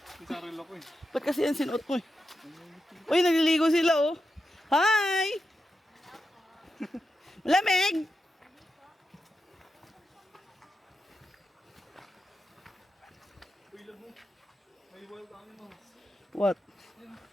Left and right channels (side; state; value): both; normal; correlation 0.88